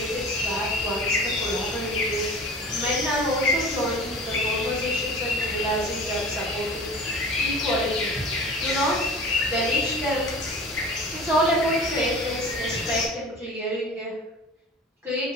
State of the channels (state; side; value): normal; both; correlation 0.38